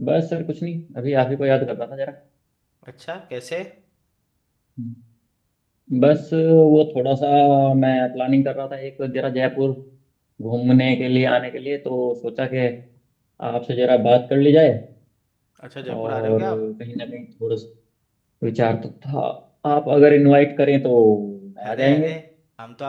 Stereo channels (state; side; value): identical; both; correlation 1.00